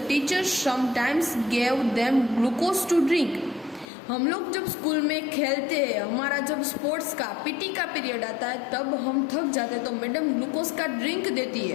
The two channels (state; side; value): drops out; right; at 3.9 s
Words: teachers sometimes gave them glucose to drink। हम लोग जब स्कूल में खेलते हैं, हमारा जब स्पोर्ट्स का PT का पीरियड आता है तब हम थक जाते हैं तो मैडम ग्लूकोज का ड्रिंक देती